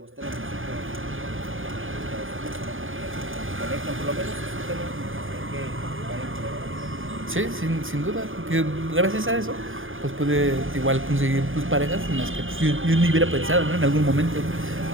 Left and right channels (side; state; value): left; late; 0.59 ms